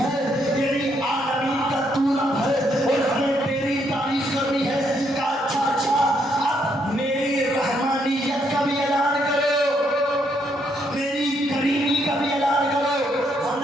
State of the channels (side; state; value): both; normal; correlation 0.74